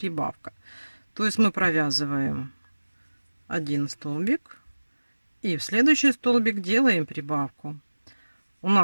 То есть мы провязываем 1 столбик и в следующий столбик делаем прибавку. У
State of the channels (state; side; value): inverted; both; correlation -1.00